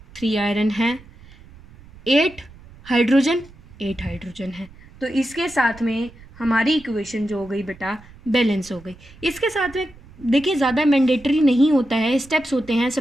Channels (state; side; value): noise; right; rumble, 22 dB below the sound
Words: है, 8 हाइड्रोजन है। तो इसके साथ में हमारी इक्वेशन जो हो गई बेटा बैलेंस हो गई। इसके साथ में देखिए ज़्यादा मैंडेटरी नहीं होता है, स्टेप्स होते हैं।